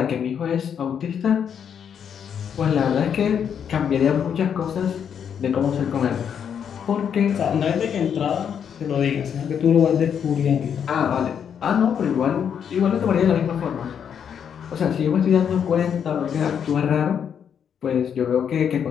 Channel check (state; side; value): quieter; right; 8.0 dB